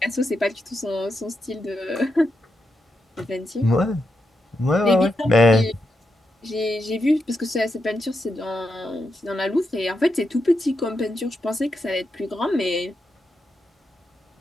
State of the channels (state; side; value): normal; both; correlation 0.85